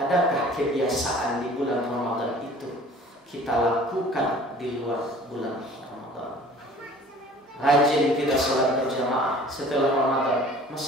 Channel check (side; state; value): both; normal; correlation 0.48